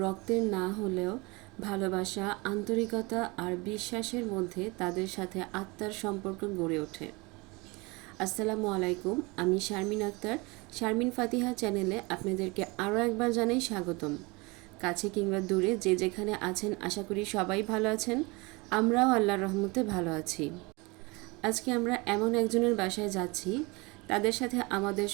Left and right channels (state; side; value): quieter; left; 26.0 dB